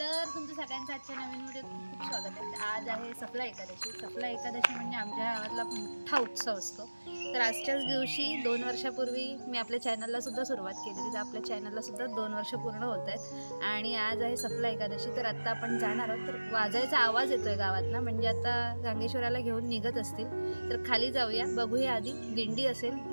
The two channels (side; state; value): both; inverted; correlation -1.00